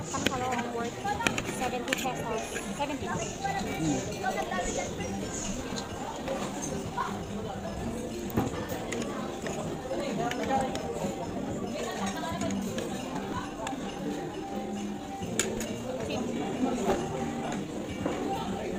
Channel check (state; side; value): identical; both; correlation 1.00